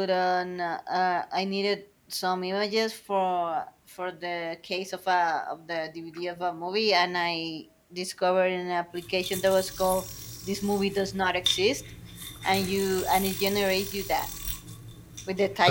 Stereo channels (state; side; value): identical; both; correlation 1.00